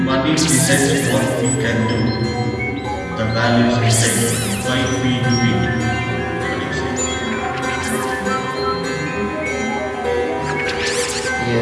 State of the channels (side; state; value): both; identical; correlation 1.00